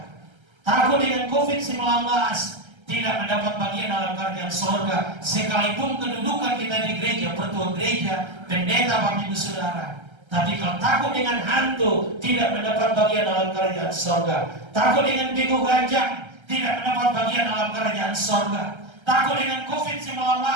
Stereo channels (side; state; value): left; late; 1.3 ms